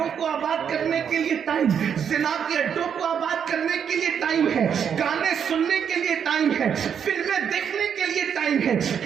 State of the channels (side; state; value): left; quieter; 7.8 dB